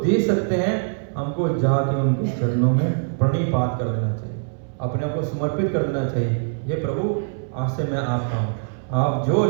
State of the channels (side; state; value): left; silent; 62 dB below the other